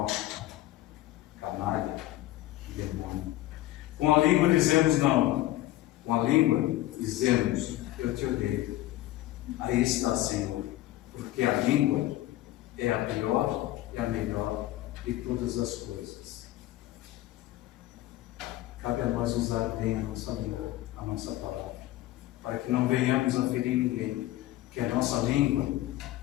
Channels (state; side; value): quieter; right; 15.7 dB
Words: canalha, demônio. Com a língua dizemos não. Com a língua dizemos eu te odeio. Aí está, Senhor, porque a língua é a pior e a melhor de todas as coisas. Cabe a nós usar bem a nossa língua, a nossa palavra, para que não venhamos a ferir ninguém, que a nossa língua